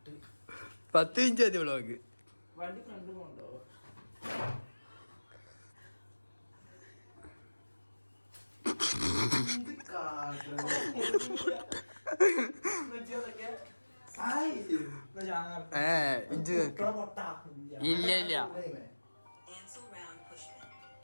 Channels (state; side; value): inverted; both; correlation -1.00